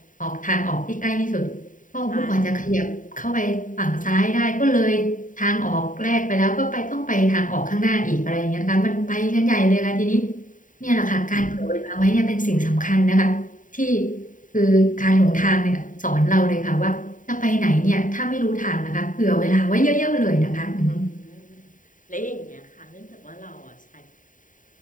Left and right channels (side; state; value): right; late; 0.38 ms